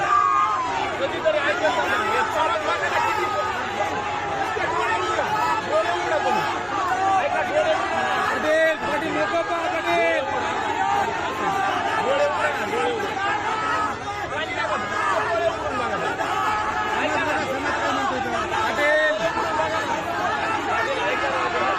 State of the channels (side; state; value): both; identical; correlation 1.00